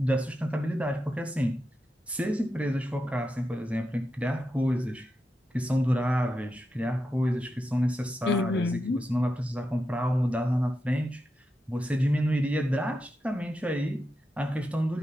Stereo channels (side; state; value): both; normal; correlation 0.88